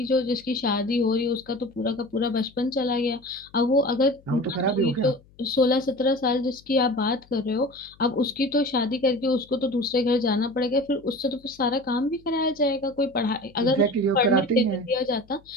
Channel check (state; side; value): noise; left; hum, 28 dB below the sound